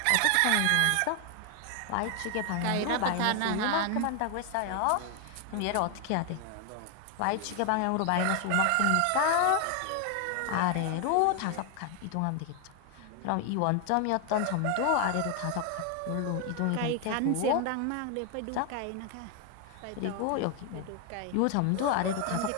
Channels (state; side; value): different; both; correlation 0.01